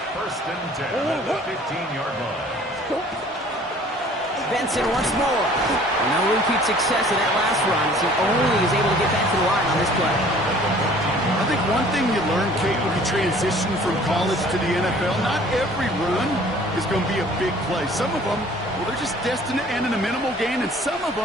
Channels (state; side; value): normal; both; correlation 0.52